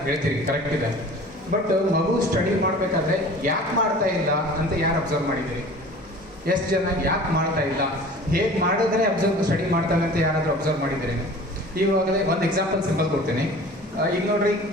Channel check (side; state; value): both; normal; correlation 0.43